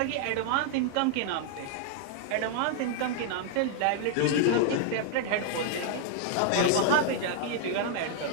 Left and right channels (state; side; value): different; both; correlation -0.01